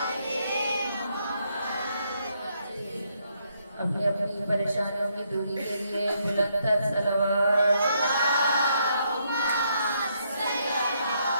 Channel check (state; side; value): inverted; both; correlation -0.74